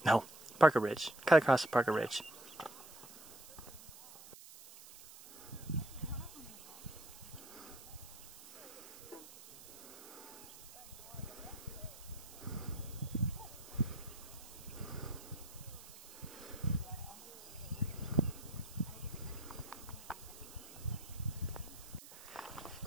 No, Parker Ridge. Cut across to Parker Ridge.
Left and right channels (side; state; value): right; noise; hiss, 16 dB below the sound